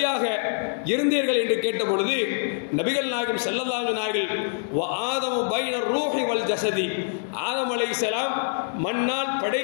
இருந்தீர்கள் என்று கேட்ட பொழுது நபிகள் நாயகம் ஸல்லல்லாஹு அலைஹி வஸல்லம் வ ஆதமு பைன ரூஹி வல் ஜஸதி, ஆதம் அலைஹிஸ்ஸலாம் மண்ணால்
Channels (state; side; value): silent; right; digital silence